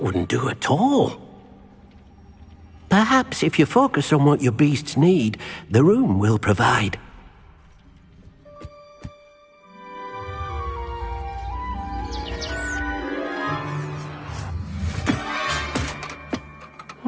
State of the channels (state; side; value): identical; both; correlation 1.00